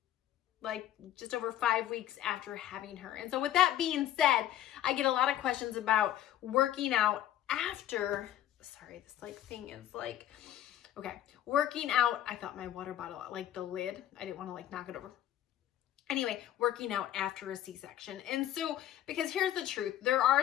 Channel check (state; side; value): quieter; right; 12.3 dB